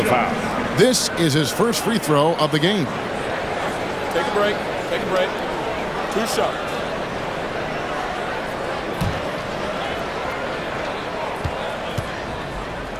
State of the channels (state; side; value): identical; both; correlation 1.00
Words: foul. This is his first free throw of the game. Take a break. Take a break. 2 shots.